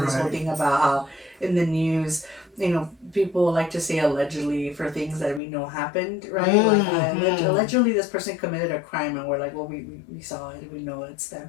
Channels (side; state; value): right; drops out; at 5.4 s